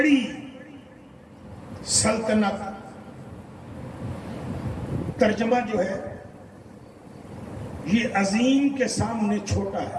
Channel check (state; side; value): identical; both; correlation 1.00